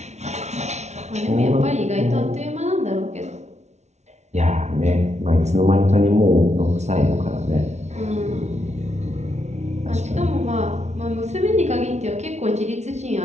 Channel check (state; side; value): late; left; 0.32 ms